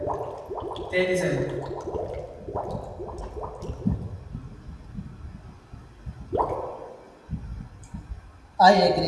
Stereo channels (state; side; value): identical; both; correlation 1.00